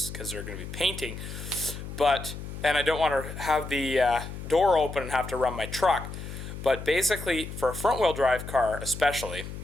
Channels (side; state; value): left; noise; hum, 9 dB below the sound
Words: because they're going to be painting. And I don't want to have the door open and have to run my truck. But basically, for a front-wheel drive car especially,